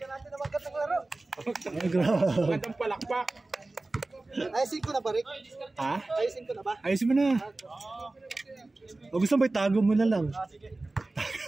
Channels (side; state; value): left; quieter; 3.0 dB